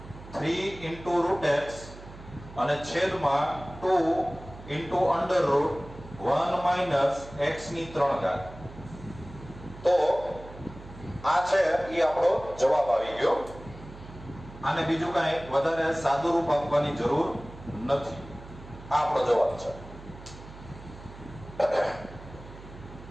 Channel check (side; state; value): right; noise; hum, 16 dB below the sound